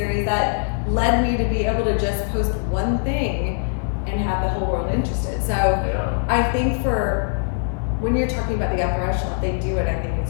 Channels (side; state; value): right; silent; digital silence